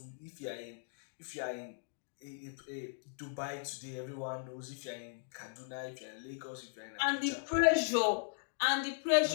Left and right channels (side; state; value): right; silent; digital silence